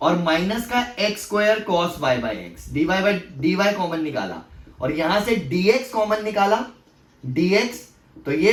और माइनस का x square cos Y by x, dy common निकाला, और यहां से dx कॉमन निकाला, dx, तो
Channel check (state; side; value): identical; both; correlation 1.00